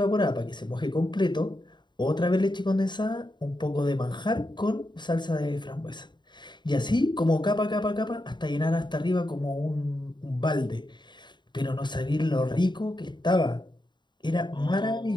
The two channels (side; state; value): right; late; 0.22 ms